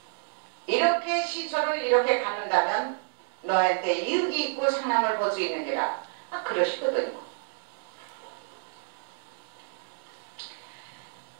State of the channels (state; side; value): silent; left; digital silence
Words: 이렇게 시초를 이렇게 가는다면 너한테 이익이 있고 상남을 볼 수 있는 게라. 그러시거든요.